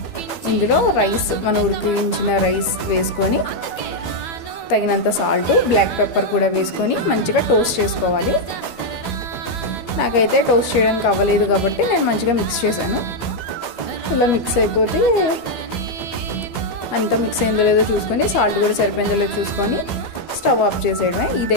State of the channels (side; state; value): right; late; 12 ms